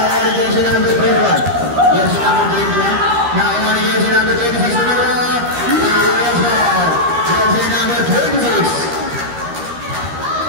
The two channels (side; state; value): left; late; 13 ms